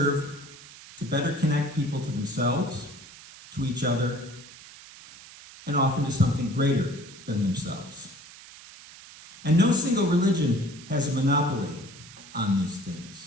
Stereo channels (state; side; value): noise; right; hiss, 18 dB below the sound